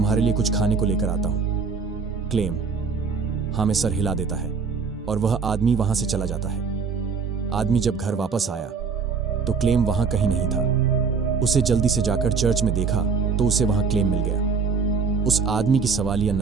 लिए कुछ खाने को लेकर आता हूं। क्लेम हाँ में सर हिला देता है और वह आदमी वहां से चला जाता है। आदमी जब घर वापस आया तो क्लेम वहां कहीं नहीं था। उसे जल्दी से जाकर चर्च में देखा तो उसे वहां क्लेम मिल गया। उस आदमी की सवालिया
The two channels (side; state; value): left; quieter; 5.4 dB